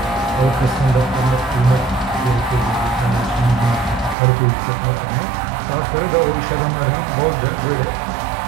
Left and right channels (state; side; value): drops out; left; at 4.2 s